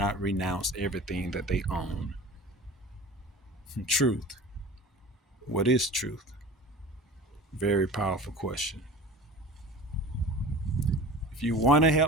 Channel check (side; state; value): both; normal; correlation 0.37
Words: renounce everything that they own. Truth. What is truth? Very powerful question. If you want to